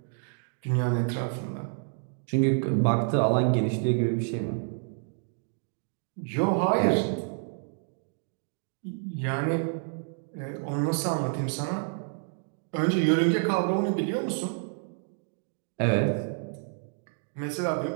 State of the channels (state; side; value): silent; left; 57 dB below the other